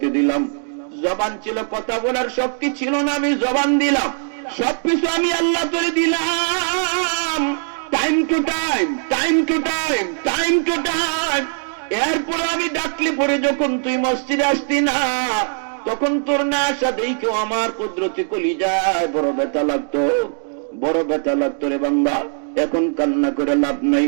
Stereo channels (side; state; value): left; silent; 66 dB below the other